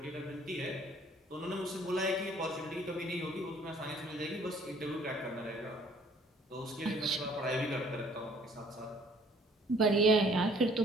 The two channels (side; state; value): both; normal; correlation 0.58